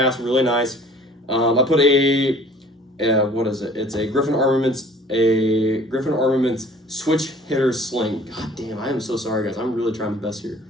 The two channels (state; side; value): normal; both; correlation 0.51